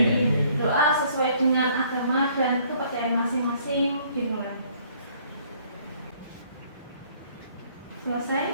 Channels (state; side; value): inverted; both; correlation -0.61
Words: Doa sesuai dengan agama dan kepercayaan masing-masing dimulai.